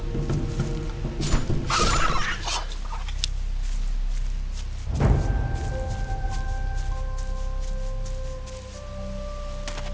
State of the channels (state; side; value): identical; both; correlation 1.00